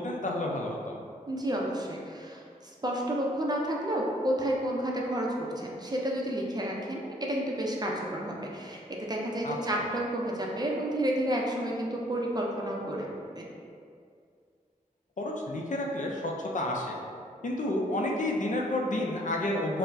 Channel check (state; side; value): normal; both; correlation 0.61